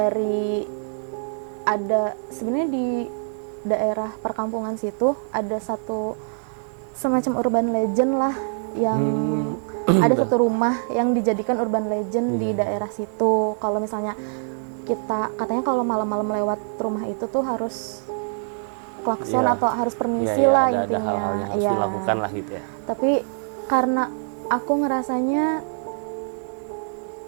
sebenarnya di daerah perkampungan situ ada satu semacam urban legend lah, yang ada satu rumah yang dijadikan urban legend di daerah situ. Kalau misalnya katanya kalau malam-malam lewat rumah itu tuh harus klakson atau harus permisi lah intinya. Ada hal-hal yang harus dilakukan lah gitu ya. Tapi karena aku ngerasanya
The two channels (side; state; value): left; silent; digital silence